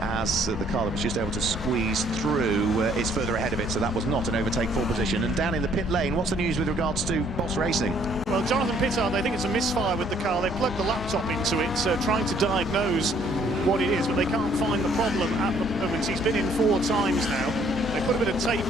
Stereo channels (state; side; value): normal; both; correlation 0.63